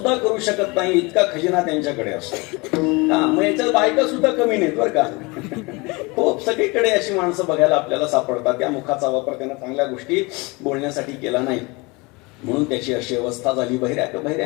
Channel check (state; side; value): quieter; right; 26.1 dB